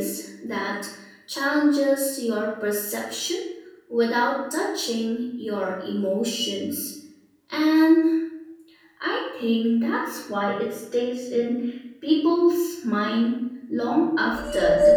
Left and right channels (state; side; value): identical; both; correlation 1.00